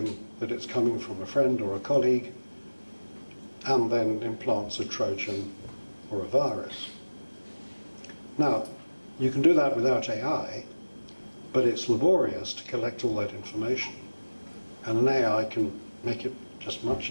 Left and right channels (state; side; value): inverted; both; correlation -1.00